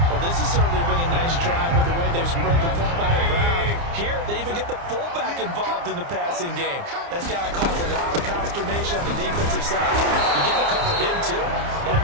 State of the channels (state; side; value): late; left; 29 ms